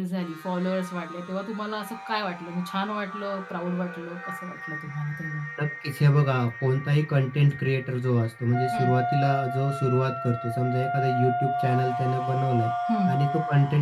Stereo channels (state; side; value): identical; both; correlation 1.00